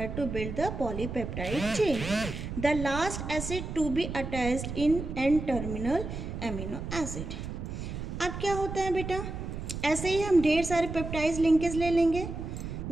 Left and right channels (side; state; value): right; noise; rumble, 6 dB below the sound